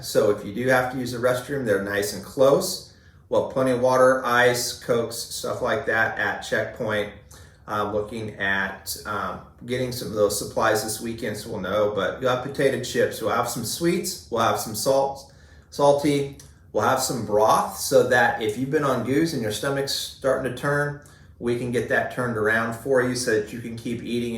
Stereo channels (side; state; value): both; identical; correlation 1.00